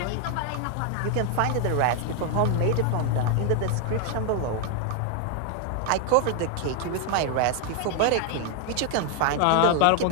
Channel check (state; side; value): different; both; correlation 0.01